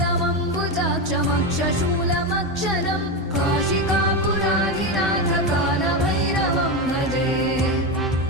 काशिकापुराधिनाथ कालभैरवं भजे।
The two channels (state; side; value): normal; both; correlation 0.14